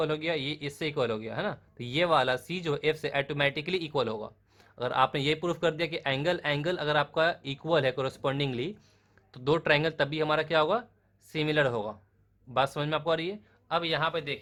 हो गया, ये इससे इक्वल हो गया है ना, तो ये वाला सी जो एफ से ऑटोमेटिकली इक्वल होगा. अगर आपने ये प्रूफ कर दिया कि एंगल एंगल अगर आपका इक्वल है करस्पॉन्डिंगली तो दो ट्राइंगल तभी हमारा क्या होगा, सिमिलर होगा. बात समझ में आपको आ रही है. अब यहाँ पे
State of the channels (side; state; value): both; identical; correlation 1.00